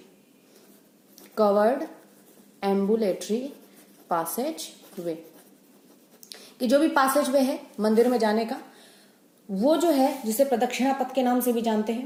Covered ambulatory passageway, कि जो भी पासेज वे है मंदिर में जाने का, वो जो है जिसे प्रदक्षिणा पथ के नाम से भी जानते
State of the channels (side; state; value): both; identical; correlation 1.00